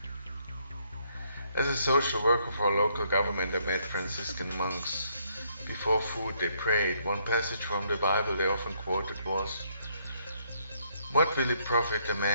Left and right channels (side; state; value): both; inverted; correlation -0.70